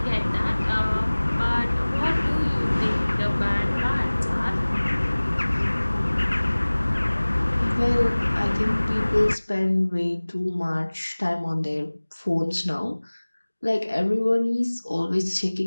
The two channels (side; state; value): both; inverted; correlation -1.00